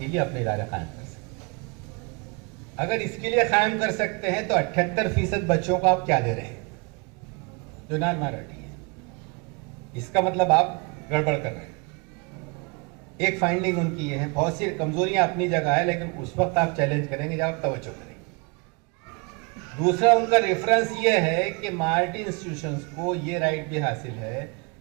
لیے اپنے ادارے قائم کر سکتے ہیں. اگر اس کے لیے قائم کر سکتے ہیں تو 78% بچوں کو آپ کیا دے رہے ہیں جو نان مائنارٹی ہے. اس کا مطلب آپ گڑبڑ کر رہے ہیں. ایک فائنڈنگ ان کی یہ ہے. بہت سی کمزوریاں اپنی جگہ ہے، لیکن اس وقت آپ چیلنج کریں گے جب آپ توجہ کریں گے. دوسرا ان کا ریفرنس یہ ہے کہ مائنارٹی انسٹیٹیوشنز کو یہ رائٹ بھی حاصل ہے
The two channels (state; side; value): quieter; left; 31.6 dB